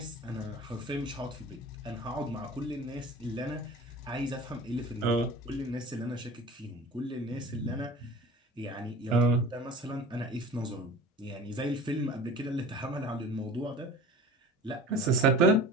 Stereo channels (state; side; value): normal; both; correlation 0.39